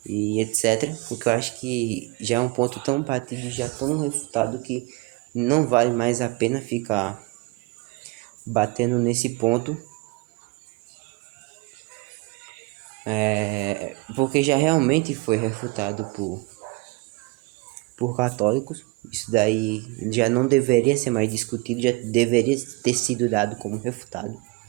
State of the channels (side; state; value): left; quieter; 23.9 dB